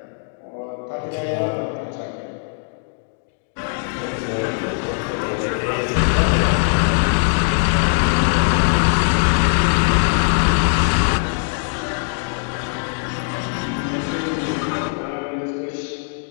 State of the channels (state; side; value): silent; right; digital silence